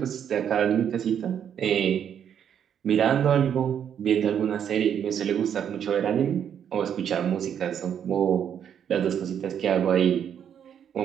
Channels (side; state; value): left; quieter; 8.8 dB